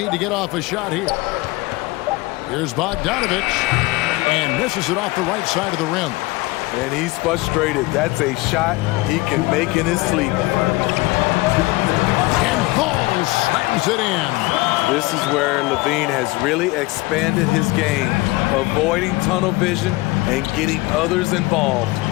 to get off a shot here. Here's Bogdanovich. And misses it off the right side of the rim. And he's frustrated. That's a shot he can make in his sleep. And Ball slams it in. This is where Levine has really expanded his game, avoiding tunnel vision and getting others involved.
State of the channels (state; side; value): quieter; right; 21.8 dB